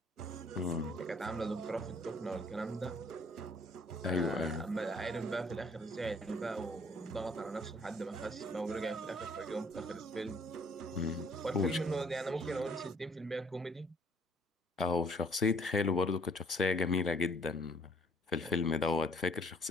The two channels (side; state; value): both; normal; correlation 0.61